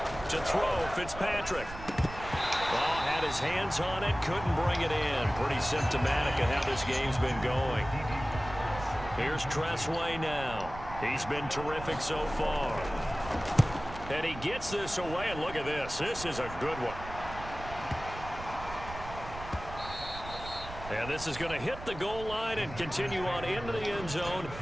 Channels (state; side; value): noise; right; rumble, 12 dB below the sound